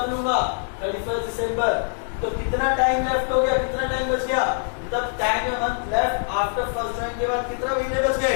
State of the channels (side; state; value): right; silent; digital silence